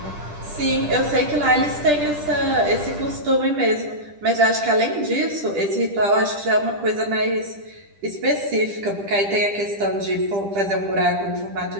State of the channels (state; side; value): late; left; 10 ms